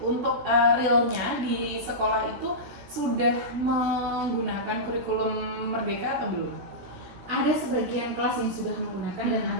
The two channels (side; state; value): left; late; 17 ms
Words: realnya di sekolah itu sudah menggunakan kurikulum Merdeka atau belum? Ada sebagian kelas yang sudah menggunakan dan